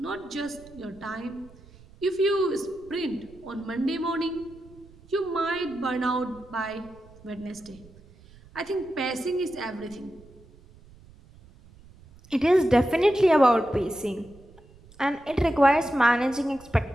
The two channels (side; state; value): right; noise; rumble, 24 dB below the sound